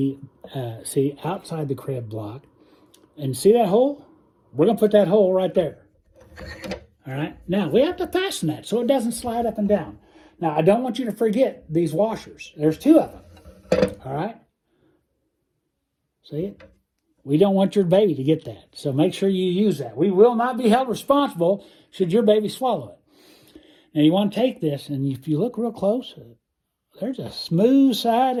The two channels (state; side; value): identical; both; correlation 1.00